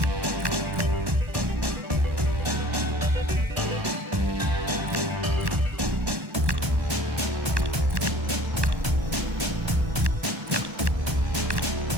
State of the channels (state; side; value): late; left; 1.1 ms